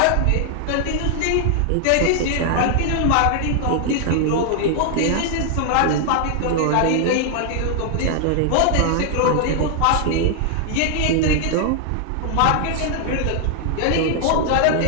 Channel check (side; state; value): both; different; correlation 0.00